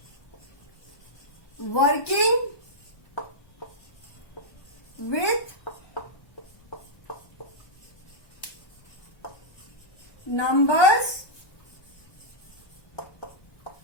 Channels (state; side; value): late; right; 1.2 ms